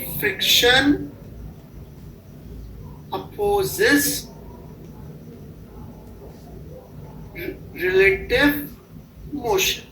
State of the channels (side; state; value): both; identical; correlation 1.00